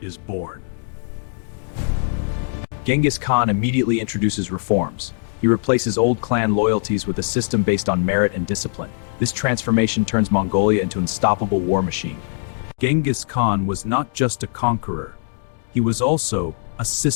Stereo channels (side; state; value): right; silent; digital silence